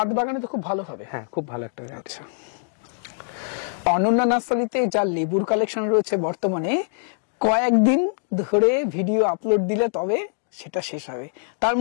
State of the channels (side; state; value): right; silent; digital silence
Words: বাগানে তো খুব ভালো হবে। হ্যাঁ, খুব ভালো একটা। আচ্ছা, অনন্যা নার্সারিতে যা লেবুর কালেকশন রয়েছে বর্তমানে, কয়েকদিন ধরে ভিডিও আপলোড দিলে তবে সেটা শেষ হবে। তার